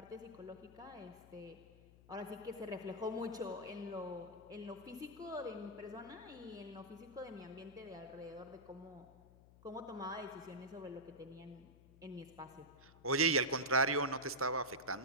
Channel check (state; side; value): noise; left; hum, 22 dB below the sound